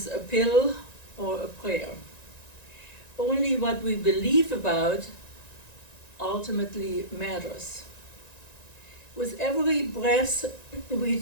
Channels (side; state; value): right; late; 1.9 ms